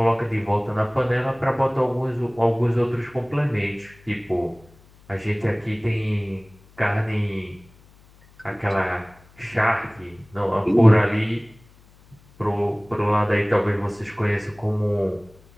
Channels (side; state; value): left; noise; hum, 27 dB below the sound